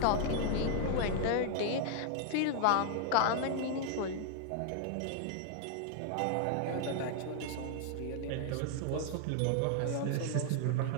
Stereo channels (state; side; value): different; both; correlation 0.00